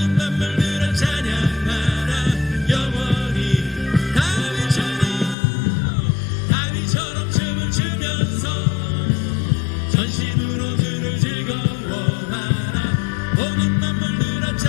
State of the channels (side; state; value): right; drops out; at 5.4 s